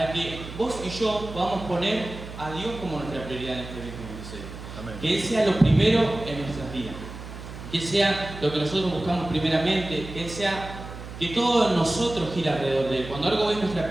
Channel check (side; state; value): right; noise; hum, 12 dB below the sound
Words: que vos y yo podamos poner a Dios como nuestra prioridad en este 2026. Amén. Que Él sea lo primero en nuestras vidas, que Él sea lo que nosotros buscamos primeramente, que Él sea que todo en nosotros gira alrededor de Él. Cuando algo es nuestra